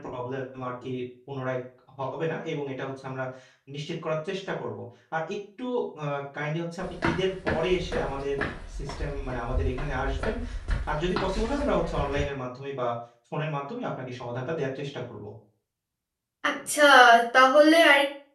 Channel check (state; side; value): identical; both; correlation 1.00